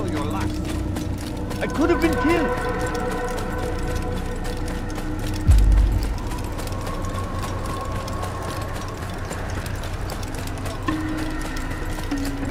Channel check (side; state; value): both; identical; correlation 1.00